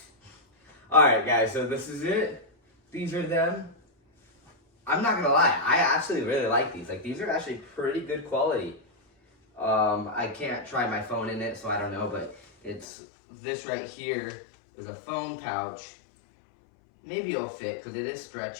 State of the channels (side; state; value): right; drops out; at 12.9 s